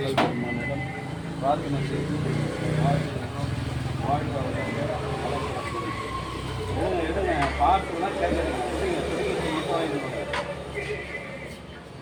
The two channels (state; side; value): identical; both; correlation 1.00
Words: பெருமானிடம் பிரார்த்தனை செய்து வாழ்கின்றோம். வாழ்க எடுங்க பார்த்துலாம் கேட்குறீங்க.